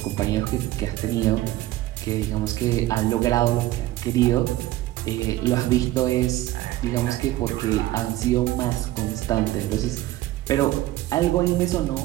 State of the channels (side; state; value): left; quieter; 15.8 dB